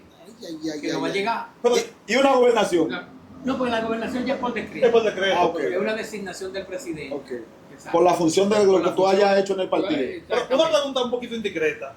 Ay, Que no va a llegar. Pero Y una gobernación. No, porque la gobernación ya es por es decreto. por decreto. Ah, ok. Es una designación del presidente. Ok. Exacto. Por la función de lo Por que la tú función. hayas hecho en el partido. Pero una Exactamente. pregunta un poquito indiscreta.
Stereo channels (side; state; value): both; identical; correlation 1.00